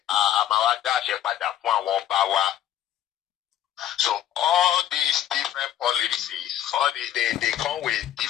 a máa wá dá àṣẹ padà fún àwọn ọba wa. So all these different policies, all these they come with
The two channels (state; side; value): quieter; right; 11.3 dB